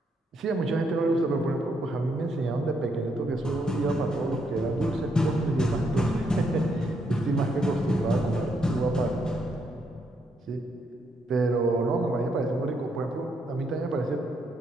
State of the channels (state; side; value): normal; both; correlation 0.76